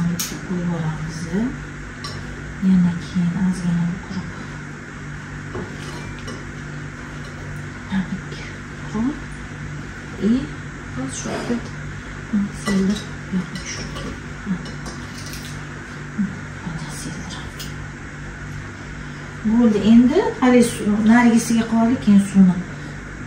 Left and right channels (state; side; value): identical; both; correlation 1.00